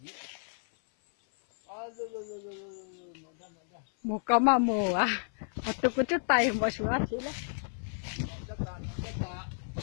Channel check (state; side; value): silent; right; 56 dB below the other